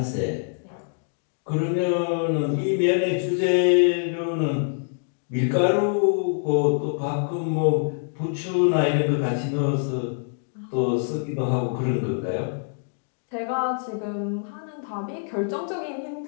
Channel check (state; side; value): silent; right; digital silence